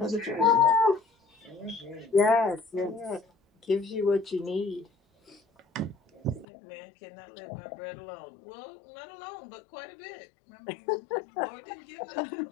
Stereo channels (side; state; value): right; drops out; at 6.5 s